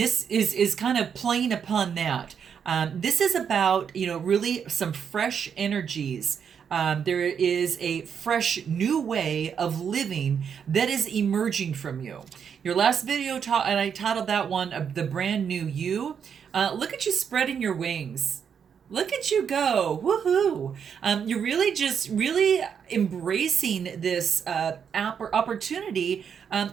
is kind of playing upon that. This is about, really some fresh energies. There is a fresh new way of living that is emerging from you. Your last video and I titled that one the brand new you. Look at you spreading your wings. Look at you go. Woohoo. You're really embracing this opportunity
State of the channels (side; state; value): left; quieter; 7.4 dB